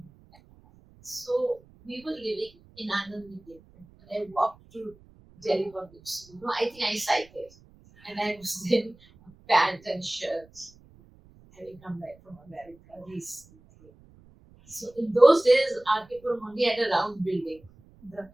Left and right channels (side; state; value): right; noise; rumble, 26 dB below the sound